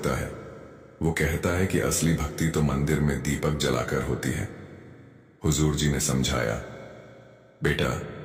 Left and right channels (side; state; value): both; identical; correlation 1.00